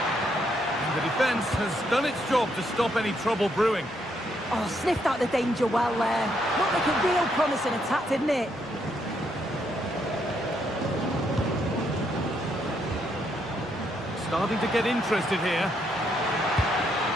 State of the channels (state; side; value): normal; both; correlation 0.75